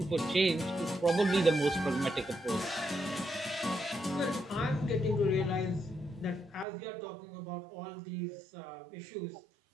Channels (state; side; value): drops out; left; at 6.7 s